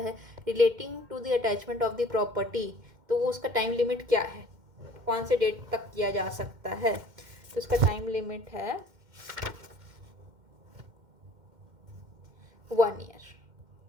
relating to the attachment of the property. तो वो उसका टाइम लिमिट क्या है, कौन से डेट तक किया जा सकता है, तो उसका टाइम लिमिट है 1 ईयर।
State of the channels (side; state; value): left; late; 2.1 ms